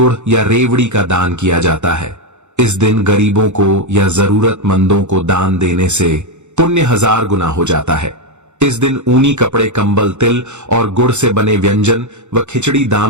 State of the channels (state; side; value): late; left; 0.83 ms